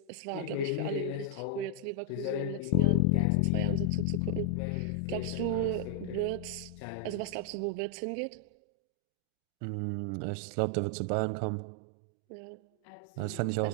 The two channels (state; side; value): different; both; correlation 0.00